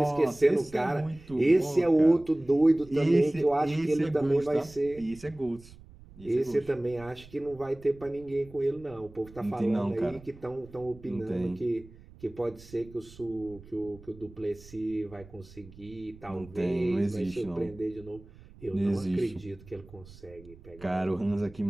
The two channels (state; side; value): noise; right; rumble, 21 dB below the sound